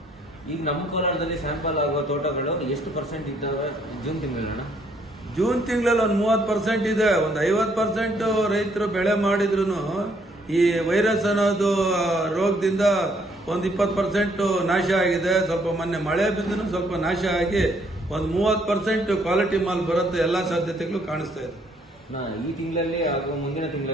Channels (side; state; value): both; normal; correlation 0.67